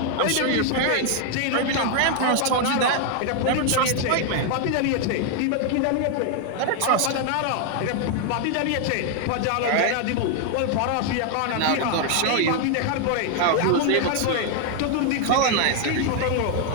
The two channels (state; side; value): different; both; correlation 0.00